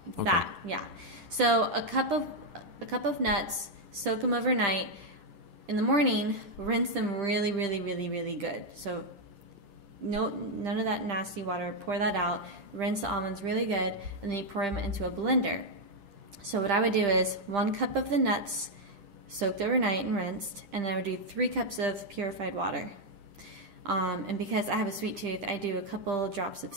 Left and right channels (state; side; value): late; left; 10 ms